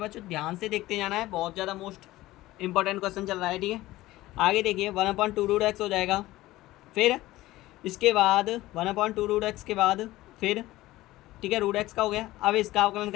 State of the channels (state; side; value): quieter; right; 17.2 dB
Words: बच्चों। ध्यान से देखते जाना है, बहुत ज़्यादा मोस्ट इंपॉर्टेंट क्वेश्चन चल रहा है, ठीक है। आगे देखिए 1/2 रूट एक्स हो जाएगा, फिर इसके बाद 1/2 रूट एक्स के बाद फिर, ठीक है, रूट एक्स का हो गया। अब इसका अवकलन